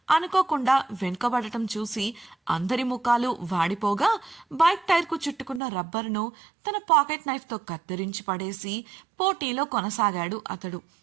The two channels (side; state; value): left; drops out; at 5.6 s